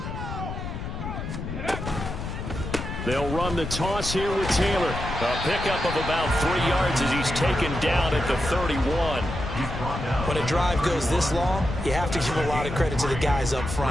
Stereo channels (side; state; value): left; noise; rumble, 6 dB below the sound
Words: They'll run the toss here with Taylor. A pickup of about 3 yards as he's taken down at the 31. When a drive goes this long, you have to give a lot of credit to the guys up